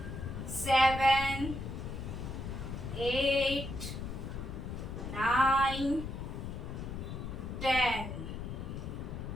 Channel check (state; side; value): noise; left; rumble, 6 dB below the sound